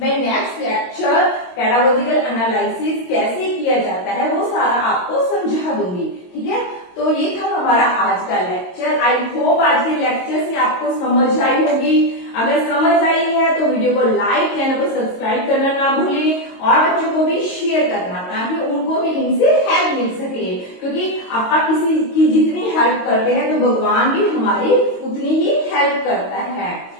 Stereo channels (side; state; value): right; late; 22 ms